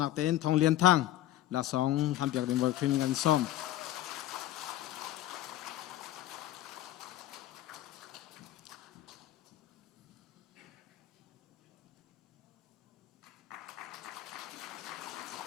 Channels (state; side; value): quieter; right; 13.8 dB